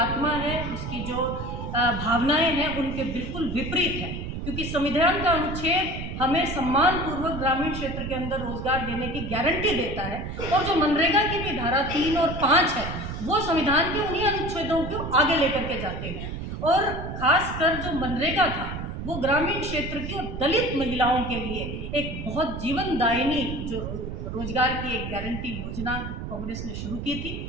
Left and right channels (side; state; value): right; noise; rumble, 6 dB below the sound